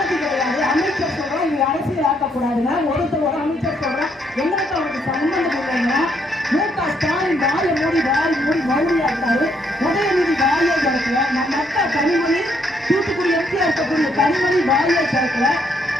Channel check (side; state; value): both; normal; correlation 0.72